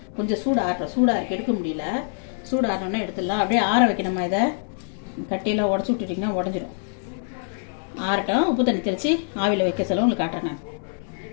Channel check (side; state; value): right; silent; 59 dB below the other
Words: கொஞ்சம் சூடாக எடுக்க முடியல. சூடு ஆனோடனே எடுத்துடலாம். அப்படியே ஆற வைக்கணுமா. இதை கட்டியெல்லாம் உடச்சி விட்டுட்டிங்கன்னா உடஞ்சிடும். ஆறட்டும். உப்பு தண்ணி தெளித்து ஆவியில் வைக்க சொல்ல உங்களுக்கு காட்டுறேன். நான்